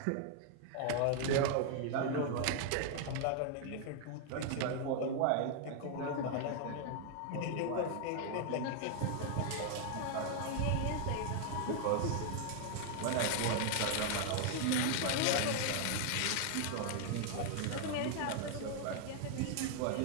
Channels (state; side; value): different; both; correlation 0.00